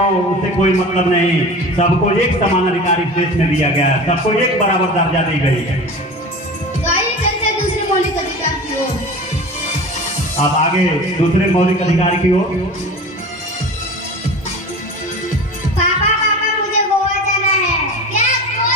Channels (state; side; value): normal; both; correlation 0.34